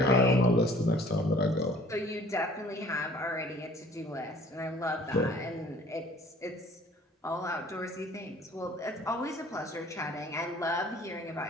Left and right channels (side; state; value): both; normal; correlation 0.51